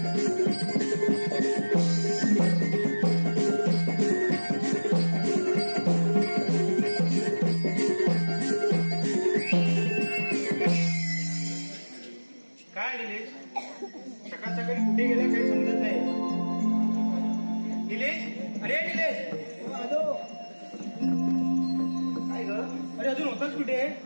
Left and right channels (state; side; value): inverted; both; correlation -1.00